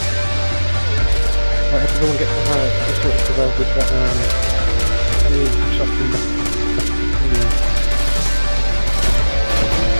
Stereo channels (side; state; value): both; inverted; correlation -1.00